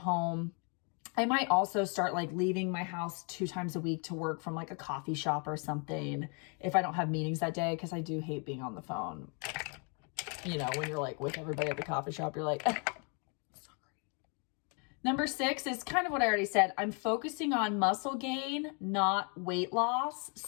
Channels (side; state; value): right; quieter; 36.7 dB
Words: I might also start like leaving my house 2 times a week to work from like a coffee shop or something if I don't have meetings that day, because I do hate being on the phone. You know, when you're like with everybody at the coffee shop, you're like, Number 6 is kind of what I already said. I'm focusing on muscle gain, not weight loss.